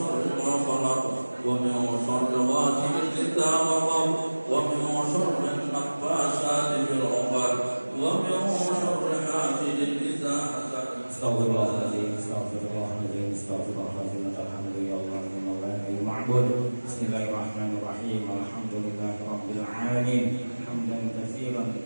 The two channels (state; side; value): inverted; both; correlation -1.00